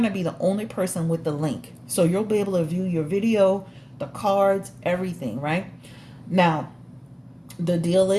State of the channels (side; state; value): both; identical; correlation 1.00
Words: to be the only person with the link. So you'll be able to view your video, the cards, everything, right? Now, the deal